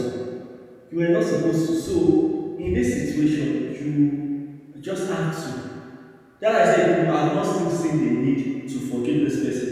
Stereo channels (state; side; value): identical; both; correlation 1.00